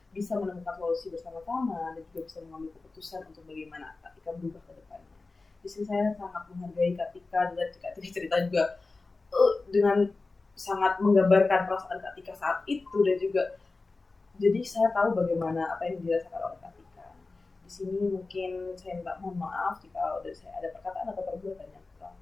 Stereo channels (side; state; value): right; quieter; 3.6 dB